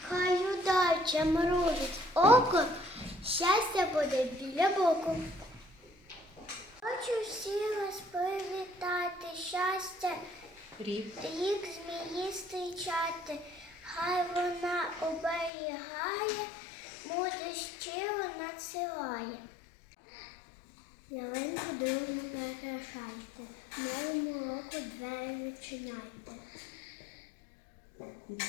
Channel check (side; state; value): right; drops out; at 15.5 s